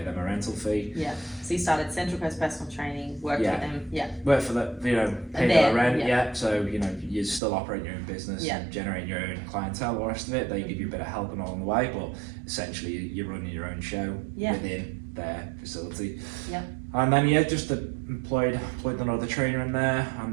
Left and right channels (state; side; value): drops out; left; at 7.4 s